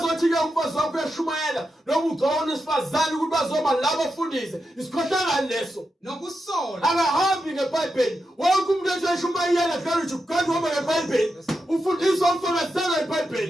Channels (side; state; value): both; normal; correlation 0.87